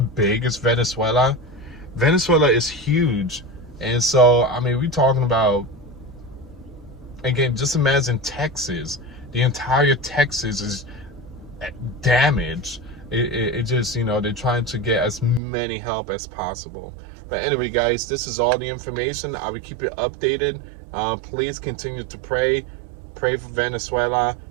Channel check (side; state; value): left; drops out; at 15.4 s